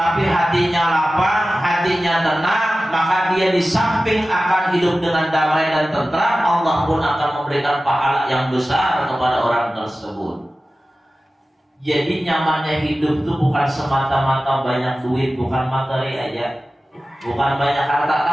hatinya lapang, hatinya tenang, maka dia di samping akan hidup dengan damai dan tentram, Allah pun akan memberikan pahala yang besar kepada orang tersebut. Jadi nyamannya hidup itu bukan semata-mata banyak duit, bukan materi aja, bukan banyak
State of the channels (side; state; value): both; normal; correlation 0.95